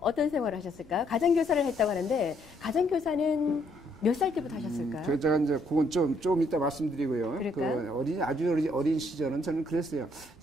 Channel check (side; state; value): right; noise; rumble, 26 dB below the sound